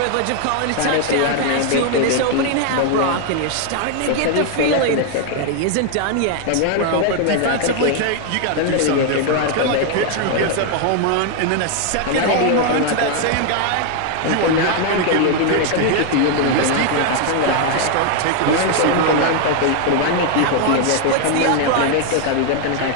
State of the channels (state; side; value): different; both; correlation 0.00